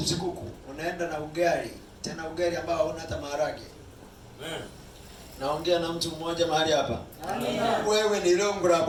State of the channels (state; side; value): identical; both; correlation 1.00